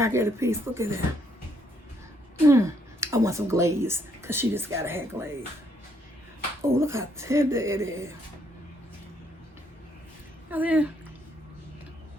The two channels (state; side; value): normal; both; correlation 0.71